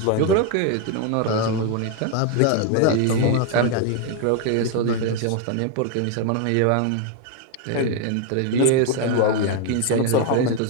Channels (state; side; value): different; both; correlation 0.01